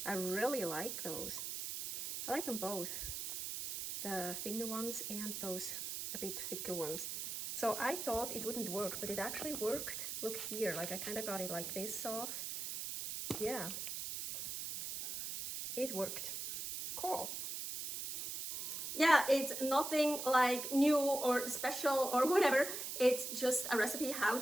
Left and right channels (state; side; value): noise; right; hiss, 5 dB below the sound